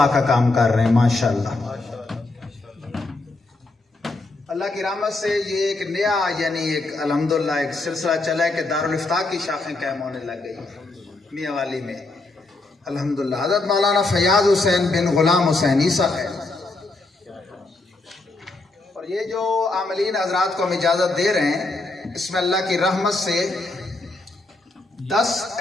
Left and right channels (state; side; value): quieter; right; 3.2 dB